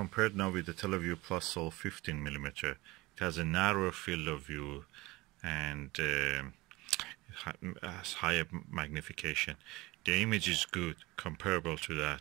now with the teleview Plusol 15mm. It has a narrower field of view and has higher magnification. The image is good, comparable to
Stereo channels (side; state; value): left; quieter; 21.5 dB